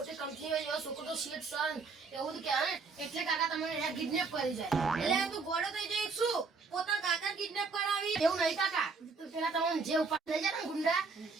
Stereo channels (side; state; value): left; quieter; 4.5 dB